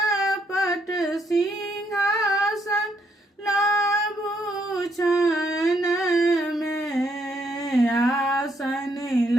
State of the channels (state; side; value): normal; both; correlation 0.73